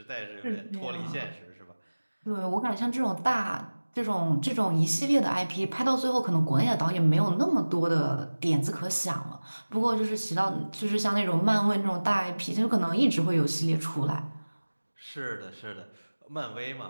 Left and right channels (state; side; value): inverted; both; correlation -1.00